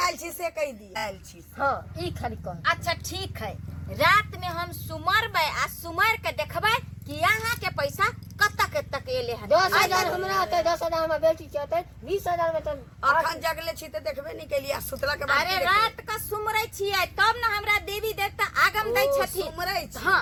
छी से कह दी आयल छी। हाँ ई खाली कह। अच्छा ठीक है, रात में हम सुमरबै आ सुमर के देखबै कि यहाँ के पैसा कत तक एले है। 10,000 हमरा आते, 10,000 हमर बेटी के आते, 20,000 में तो अखन जगले छी त देखबे नहीं केलिया सुतला के बाद अरे रात का सुमरै छियै तब न हमरा देवी देवता आगम दै छथिन। सुमरै छी। हाँ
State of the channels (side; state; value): both; identical; correlation 1.00